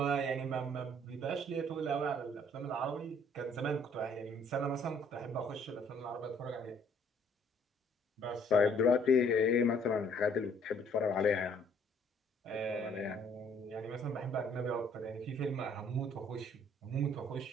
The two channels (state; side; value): normal; both; correlation 0.61